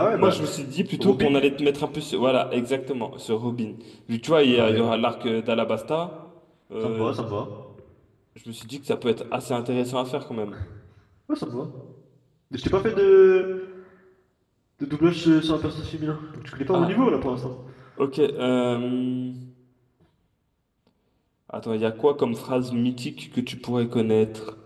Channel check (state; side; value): identical; both; correlation 1.00